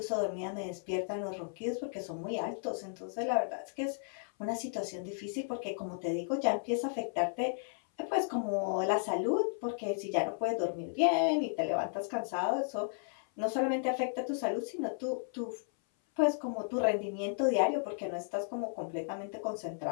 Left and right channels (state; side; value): silent; right; 55 dB below the other